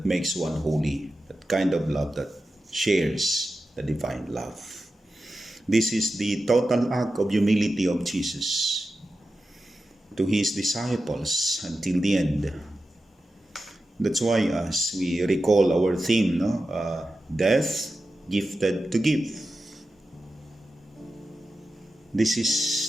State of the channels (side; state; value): both; normal; correlation 0.92